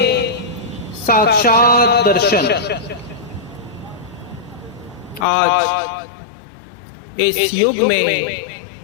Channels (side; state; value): right; drops out; at 5.2 s